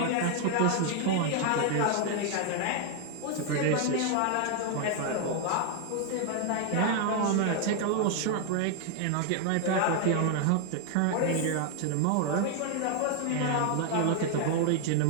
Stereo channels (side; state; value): both; different; correlation 0.00